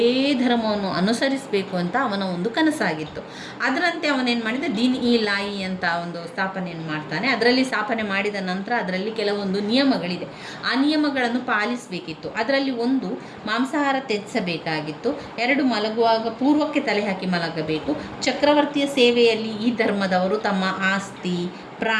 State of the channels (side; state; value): both; identical; correlation 1.00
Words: ಧರ್ಮವನ್ನು ಅನುಸರಿಸಬೇಕು ಅಂತ ಅವನ ಒಂದು ಕನಸಾಗಿತ್ತು. ಅದರಂತೆ ಅವನೇನು ಮಾಡಿದ, ದೀನ್ ಇ ಲಾಯಿ ಅಂತ ಒಂದು ಸ್ಥಾಪನೆಯನ್ನು ಮಾಡ್ತಾನೆ. ಅದರಲ್ಲಿ ಸ್ಥಾಪನೆ ಮಾಡಿದ ನಂತರ ಅದರಲ್ಲಿ ಕೆಲವೊಂದು ನಿಯಮಗಳಿದೆ. ಆ ನಿಯಮಗಳನ್ನು ಪಾಲಿಸಬೇಕಿತ್ತು. ಅದರಲ್ಲಿ ಒಂದು, ಮಾಂಸಾಹಾರ ತ್ಯಜಿಸಬೇಕಾಗಿತ್ತು. 2, ಮಲಗುವಾಗ ಪೂರ್ವಕ್ಕೆ ತಲೆ ಹಾಕಿ ಮಲಗಬೇಕು. ಚಕ್ರವರ್ತಿಯ ಸೇವೆಯಲ್ಲಿ ಈ ಧರ್ಮದವರು ತಮ್ಮ ಆಸ್ತಿ,